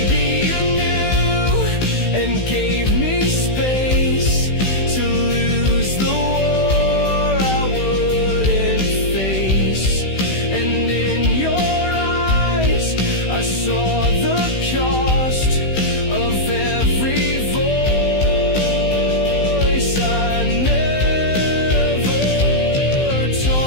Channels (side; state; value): right; late; 16 ms